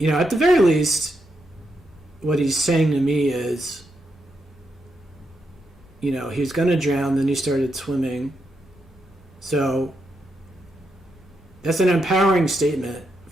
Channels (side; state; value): both; normal; correlation 0.83